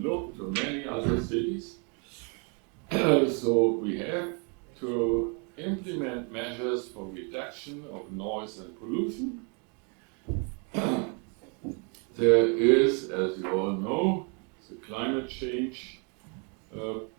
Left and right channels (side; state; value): left; quieter; 36.6 dB